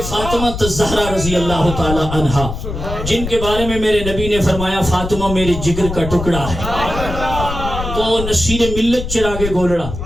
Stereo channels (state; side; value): noise; left; rumble, 7 dB below the sound